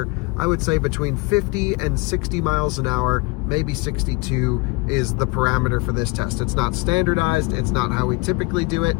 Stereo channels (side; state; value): right; quieter; 25.8 dB